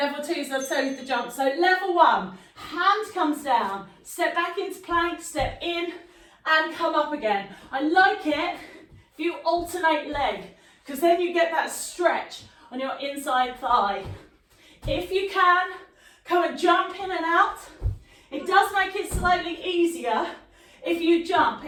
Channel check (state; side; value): identical; both; correlation 1.00